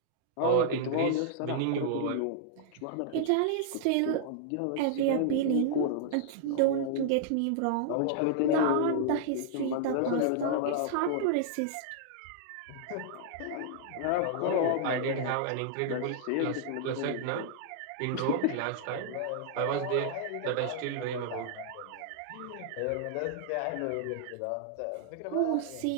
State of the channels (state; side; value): different; both; correlation -0.01